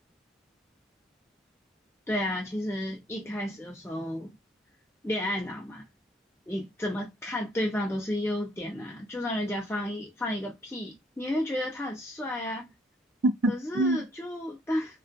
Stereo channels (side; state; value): both; normal; correlation 0.66